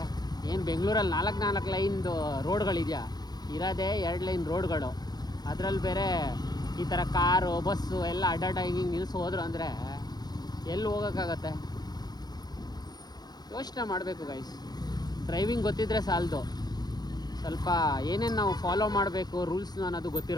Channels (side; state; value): right; late; 0.19 ms